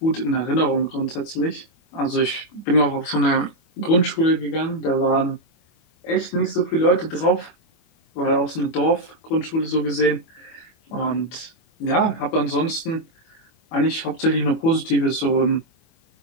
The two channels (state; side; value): late; right; 25 ms